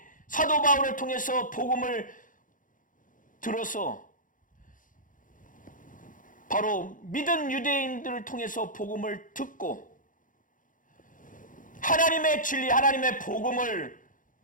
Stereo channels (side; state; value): right; late; 0.38 ms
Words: 사도 바울을 통해서 복음을 들어서 바로 믿은 유대인들을 통해서 복음을 듣고 하나님의 진리, 하나님의 복음을